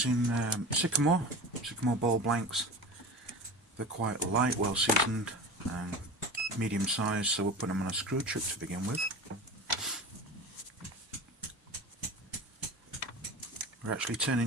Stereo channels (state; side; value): normal; both; correlation 0.32